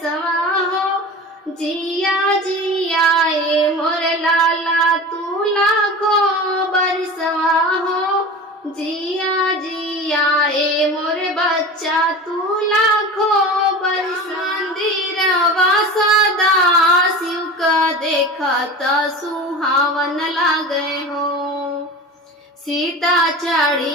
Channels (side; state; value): both; normal; correlation 0.33